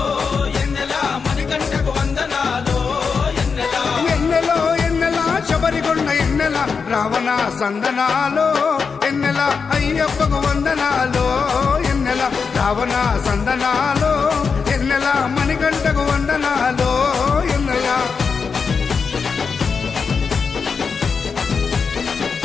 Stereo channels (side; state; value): right; quieter; 5.5 dB